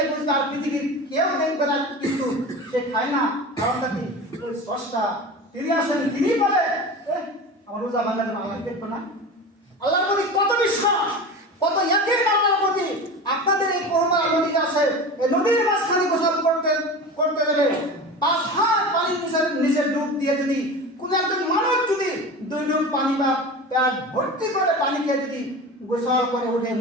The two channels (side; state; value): both; normal; correlation 0.31